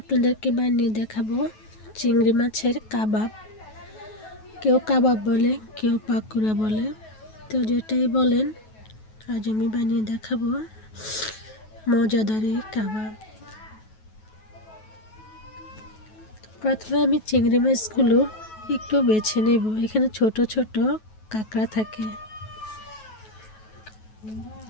আপনাদেরকে বানিয়ে দেখাবো চিংড়ি মাছের কাবাব। কেউ কাবাব বলে, কেউ পাকুড়া বলে, তো যেটাই বলেন আজ আমি বানিয়ে দেখাবো মজাদার এই কাবাব। প্রথমে আমি চিংড়ি মাছগুলো একটু বেছে নেব। এখানে ছোট ছোট কাঁকড়া থাকে।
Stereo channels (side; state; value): right; late; 9.3 ms